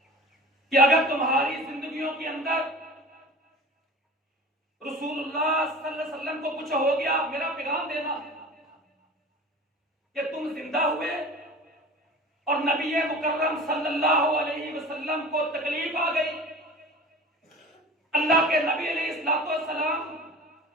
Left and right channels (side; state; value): both; normal; correlation 0.38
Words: कि अगर तुम्हारी जिंदगियों के अंदर रसूलुल्लाह सल्लल्लाहु अलैहि वसल्लम को कुछ हो गया, मेरा पैगाम देना कि तुम जिंदा हुए और नबी मुकर्रम सल्लल्लाहु अलैहि वसल्लम को तकलीफ आ गई, अल्लाह के नबी अलैहिस्सलाम